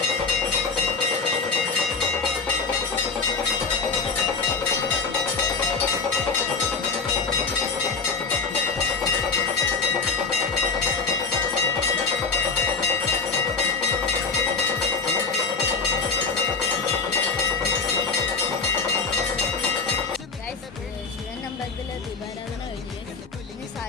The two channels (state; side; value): quieter; right; 4.6 dB